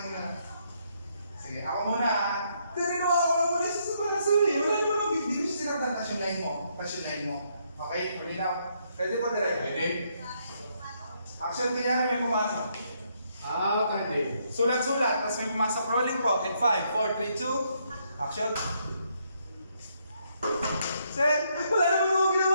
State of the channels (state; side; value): inverted; both; correlation -0.74